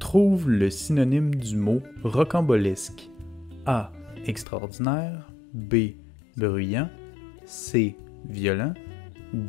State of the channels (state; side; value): drops out; right; at 4.5 s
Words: le synonyme du mot rocambolesque. A. Extraordinaire. B. Bruyant. C. Violent.